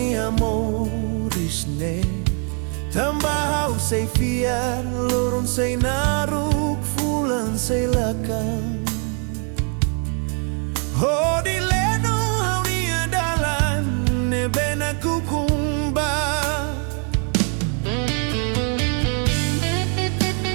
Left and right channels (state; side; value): quieter; left; 39.9 dB